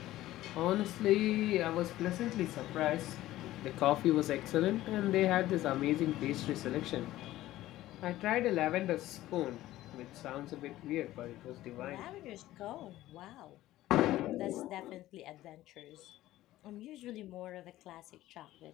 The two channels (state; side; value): quieter; right; 15.4 dB